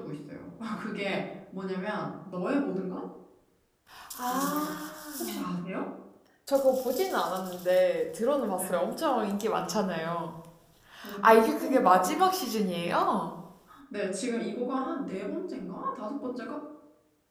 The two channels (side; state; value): both; identical; correlation 1.00